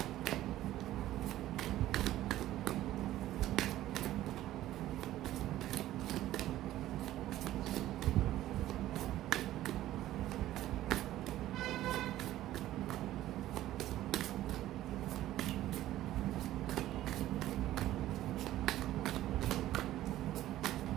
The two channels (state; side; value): quieter; left; 14.2 dB